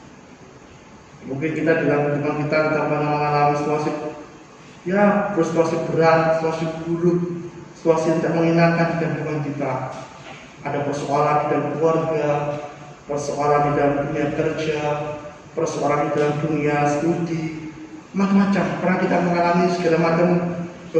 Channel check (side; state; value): both; identical; correlation 1.00